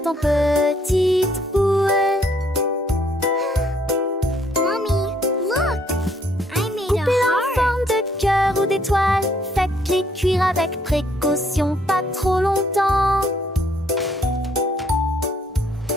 en petites boules. Mommy, look! I made a Coupez-la en heart. forme de cœur ou d'étoile. Faites-les cuire avec précaution, pas trop longtemps.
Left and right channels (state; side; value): normal; both; correlation 0.67